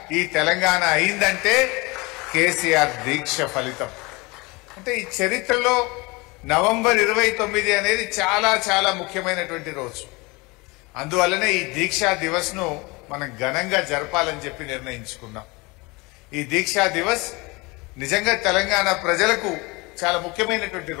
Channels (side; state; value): right; quieter; 25.5 dB